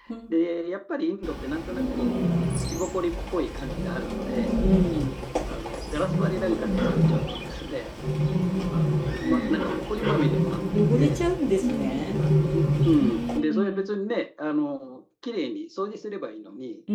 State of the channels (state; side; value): identical; both; correlation 1.00